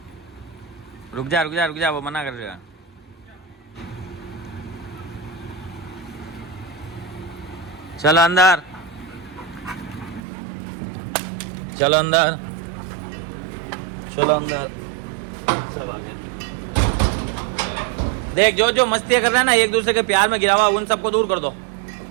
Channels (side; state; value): left; drops out; at 10.2 s